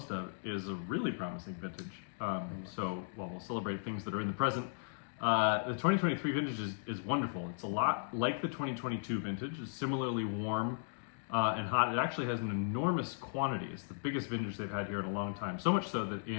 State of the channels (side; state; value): right; silent; digital silence